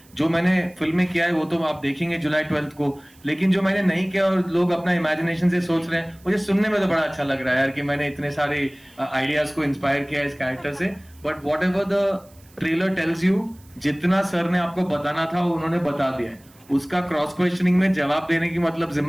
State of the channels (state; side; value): noise; right; hiss, 29 dB below the sound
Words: जो मैंने फिल्में किया है वो तो आप देखेंगे जुलाई 12 को, लेकिन जो मैंने नहीं किया और लोग अपना इमेजिनेशन से सोच रहे हैं, मुझे सुनने में तो बड़ा अच्छा लग रहा है यार कि मैंने इतने सारे आइडियाज को इंस्पायर किया इस कैरेक्टर से। But what ever the trailer tells you, जितना सर ने आपको बताना था वो उन्होंने बता दिया है। उसका क्रॉस क्वेश्चनिंग में जवाब देने की मतलब